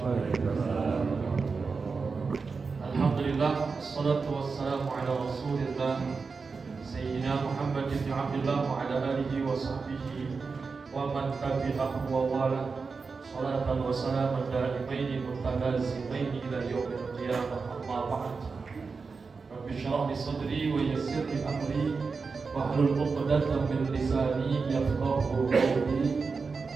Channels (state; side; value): quieter; left; 4.7 dB